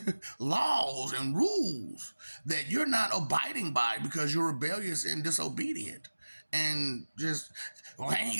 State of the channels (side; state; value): both; inverted; correlation -1.00